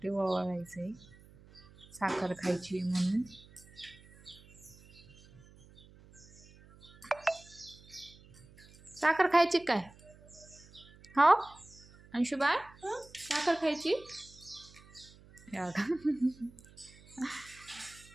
ओवाळायचंय, साखर खायची म्हणून. साखर खायची काय? हो अंशुबाई, साखर खायची.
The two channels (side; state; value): right; noise; hum, 23 dB below the sound